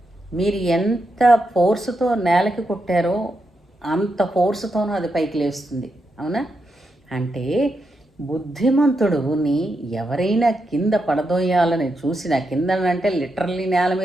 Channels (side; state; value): both; normal; correlation 0.84